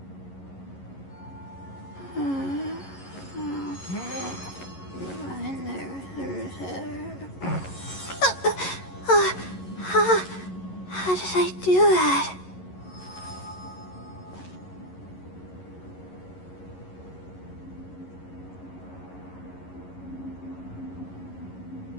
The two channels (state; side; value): late; right; 11 ms